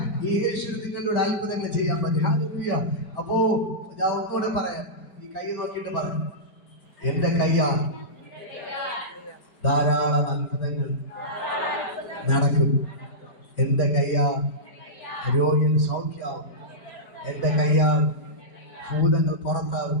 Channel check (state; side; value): late; right; 4.8 ms